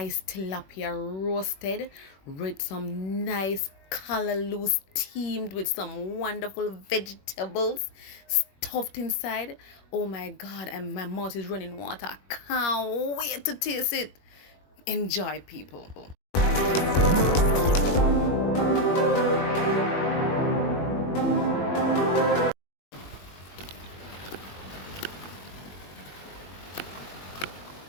tilapia roasted with some nice callaloo steamed with some wonderful vegetables stuffed inside. Oh my god, and my mouth is running water. Can't wait to taste it. Enjoy, people.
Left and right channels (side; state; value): right; late; 21 ms